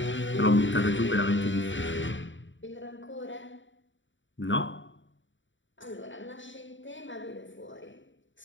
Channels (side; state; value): right; late; 0.55 ms